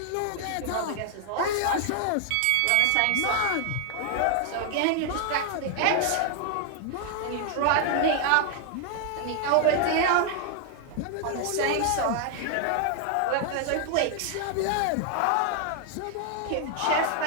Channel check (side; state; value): both; different; correlation 0.00